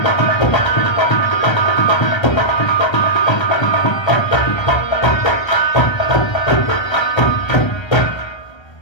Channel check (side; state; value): right; late; 1.3 ms